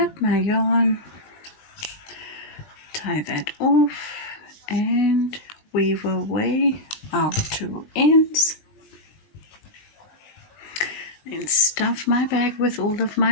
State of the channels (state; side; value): late; right; 20 ms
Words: my yarn, tie that off, and weave away our 2 ends. Then stuff my bag with all of